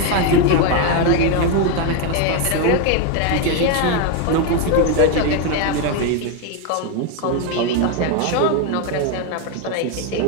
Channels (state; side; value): different; both; correlation 0.02